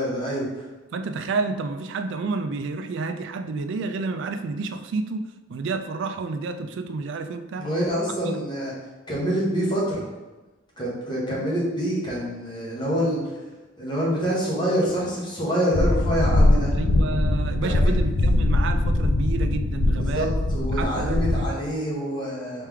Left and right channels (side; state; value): both; normal; correlation 0.68